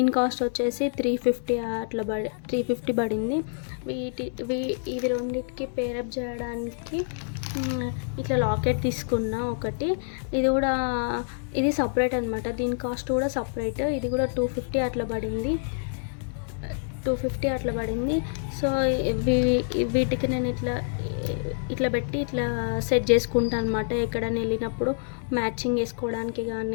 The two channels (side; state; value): right; silent; digital silence